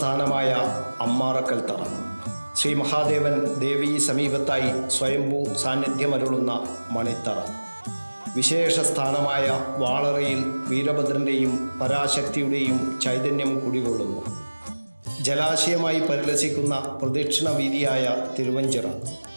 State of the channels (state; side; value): inverted; both; correlation -1.00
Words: അമ്മാറക്കൽ തറ, ശ്രീ മഹാദേവൻ ദേവീ സമീപത്തായി സ്വയംഭൂ സാന്നിധ്യമരുളുന്ന മണിത്തറ, വിശേഷ സ്ഥാനമായ വാളറയിൽ വീരഭദ്രൻ്റെയും പരാശക്തിയുടെയും ചൈതന്യം കുടികൊള്ളുന്നു. ജലാശയമായി പരിലസിക്കുന്ന പ്രദക്ഷിണ വീതിയായ തിരുവഞ്ചിറ,